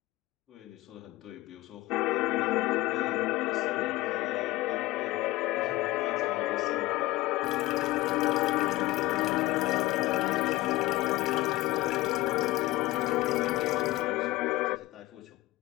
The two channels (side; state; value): right; quieter; 18.5 dB